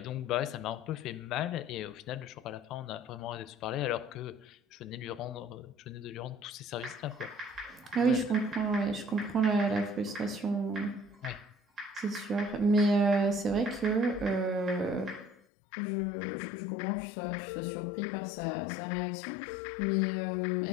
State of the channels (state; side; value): drops out; right; at 15.4 s